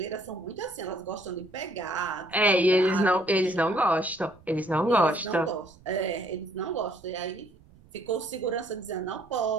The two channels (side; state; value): right; noise; rumble, 26 dB below the sound